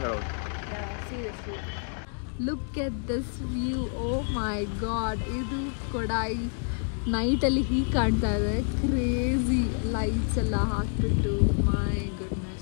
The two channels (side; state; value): right; silent; 59 dB below the other